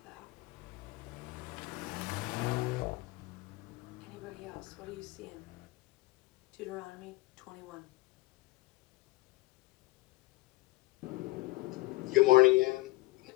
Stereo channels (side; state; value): right; quieter; 20.9 dB